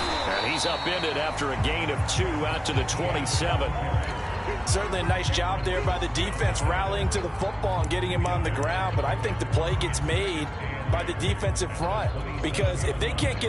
And he's upended after a gain of 2 out to the 27. Certainly a nice job there by the defense rallying to the football and getting him on the ground, but I think the play gets made by the defensive front because if they can't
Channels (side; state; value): both; identical; correlation 1.00